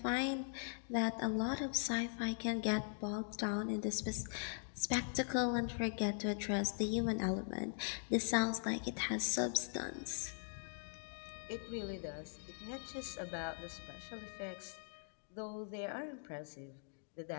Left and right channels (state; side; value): silent; right; digital silence